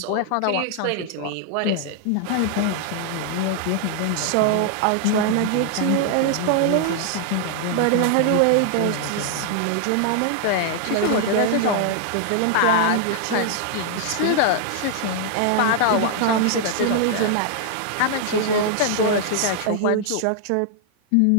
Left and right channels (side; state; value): both; different; correlation 0.00